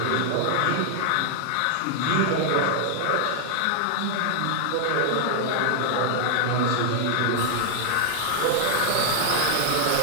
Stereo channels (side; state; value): both; different; correlation 0.00